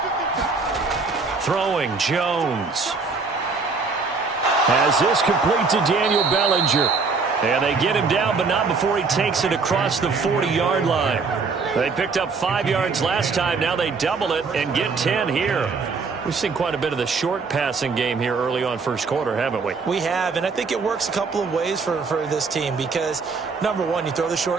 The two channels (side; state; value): left; quieter; 4.6 dB